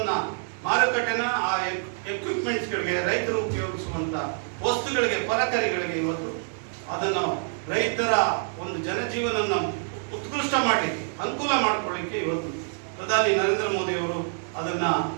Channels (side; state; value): left; silent; 61 dB below the other